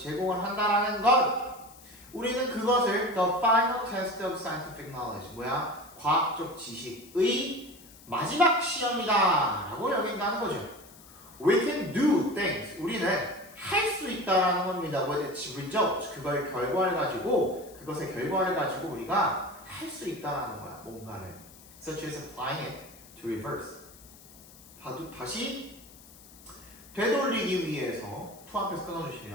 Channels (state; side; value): noise; left; hiss, 22 dB below the sound